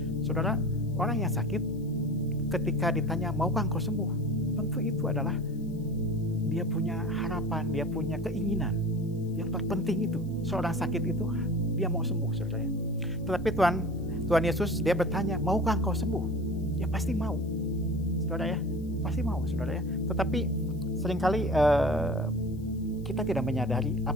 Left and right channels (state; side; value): noise; left; hiss, 29 dB below the sound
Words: Saudara, orang yang sakit ketika ditanya, "Maukah engkau sembuh?" Tentu itu adalah dia punya harapan, dia punya keinginan. Yang terpenting itu, seorang sakit itu dia mau sembuh, saudara. Tetapi Tuhan Yesus dia bertanya, "Maukah engkau sembuh?" Ya pasti mau, saudara ya, pasti mau, saudara ya. Tetapi seringkali kita tidak menyadari